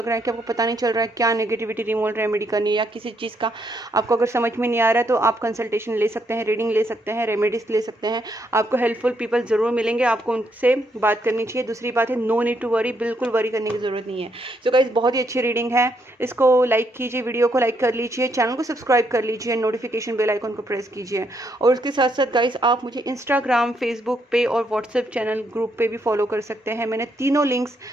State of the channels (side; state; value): both; normal; correlation 0.75